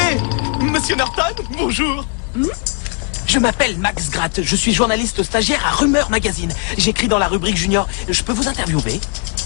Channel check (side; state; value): right; quieter; 39.4 dB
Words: Monsieur Norton, bonjour. Je m'appelle Max Gratt, je suis journaliste stagiaire à Rumeur Magazine. J'écris dans la rubrique junior. Je peux vous interviewer?